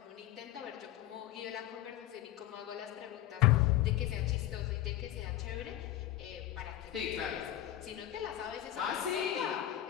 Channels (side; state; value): right; quieter; 13.1 dB